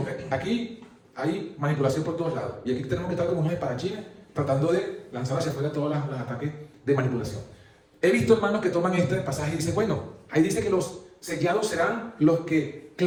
aquí hay manipulación por todos lados. Y aquí tenemos que estar como unos espadachines tratando de lanzar hacia afuera todos los ataques de manipulación. He visto hermanos que toman este pasaje y dicen, bueno, ahí dice que los sellados serán los que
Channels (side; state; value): both; identical; correlation 1.00